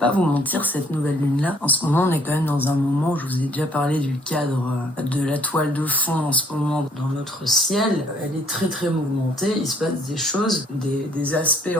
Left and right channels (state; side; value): normal; both; correlation 0.62